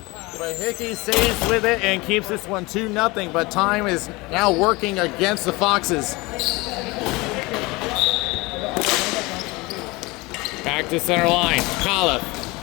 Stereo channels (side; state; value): right; quieter; 23.3 dB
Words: but Hickey saves with it and keeps this one 2-0, but time is now working against the Foxes. Back to center line, Coliff.